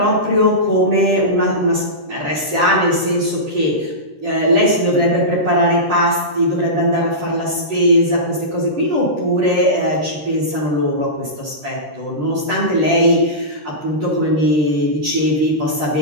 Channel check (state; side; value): late; left; 13 ms